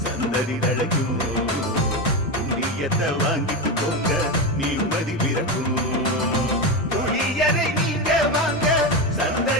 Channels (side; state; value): both; normal; correlation 0.15